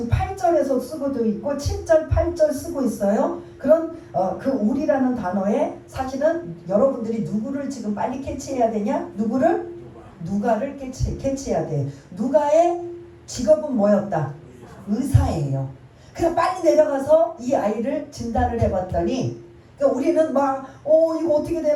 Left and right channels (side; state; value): both; identical; correlation 1.00